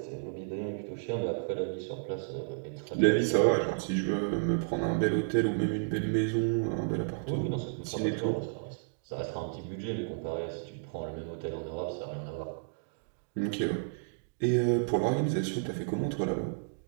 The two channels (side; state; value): left; silent; digital silence